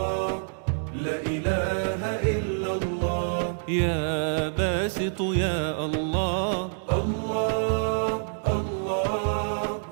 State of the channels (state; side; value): silent; left; digital silence